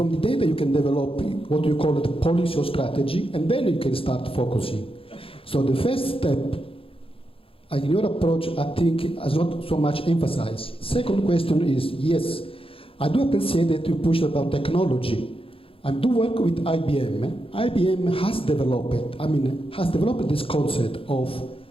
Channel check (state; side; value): late; right; 0.27 ms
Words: the data you can develop what you call it policy or strategy, and then you can start focusing. So the first step, in your approach, I think is not so much emphasized. Second question is, yes, I do appreciate that you push about technology. I do work with IBM. IBM has developed this concept of